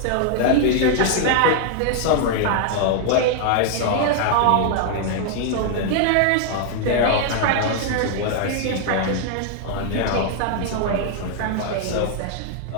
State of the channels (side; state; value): both; different; correlation 0.00